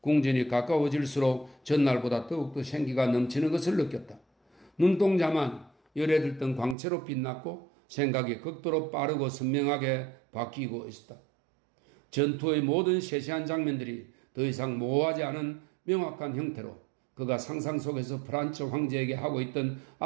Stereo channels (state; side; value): drops out; left; at 6.8 s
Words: 가까워질수록 전날보다 더욱더 생기가 넘치는 것을 느꼈다. 눈동자만 열에 들던 광채로 빛났고 생각이 극도로 빠르고 선명하게 바뀌고 있었다. 전투의 모든 세세한 장면들이 더 이상 모호하지 않은 명확한 형태로 그가 상상 속에서 프란츠 황제에게 하고 있던